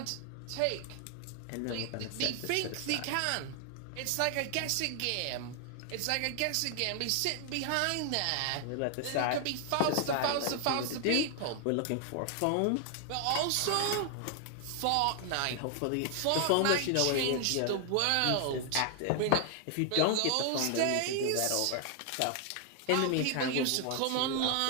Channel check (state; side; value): different; both; correlation 0.00